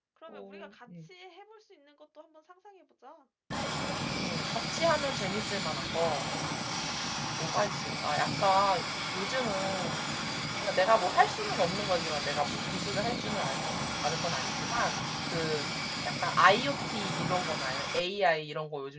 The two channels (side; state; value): both; identical; correlation 1.00